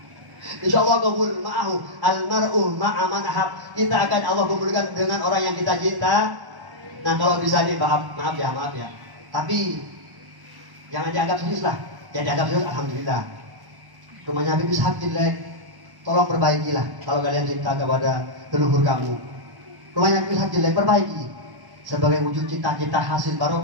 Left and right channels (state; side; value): late; left; 1.1 ms